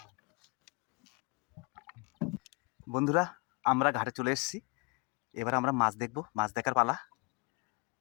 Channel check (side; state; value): right; quieter; 29.9 dB